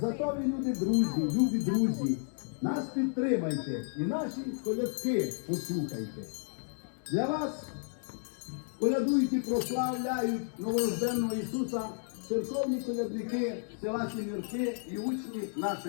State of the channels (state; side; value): silent; right; digital silence